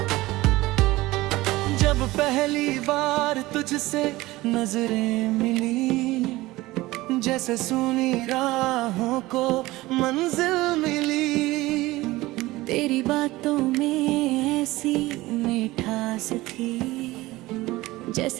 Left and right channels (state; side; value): quieter; left; 19.0 dB